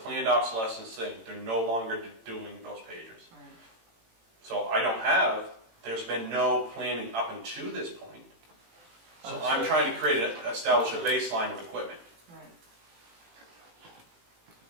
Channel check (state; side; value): late; left; 18 ms